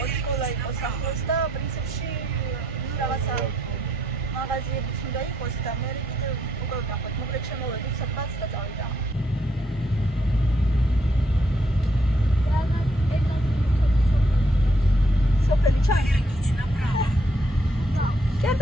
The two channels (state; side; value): normal; both; correlation 0.72